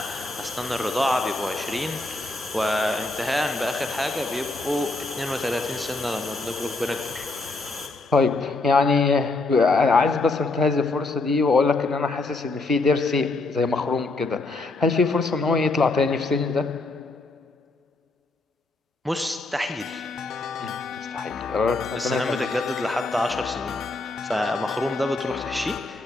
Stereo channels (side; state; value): right; quieter; 3.3 dB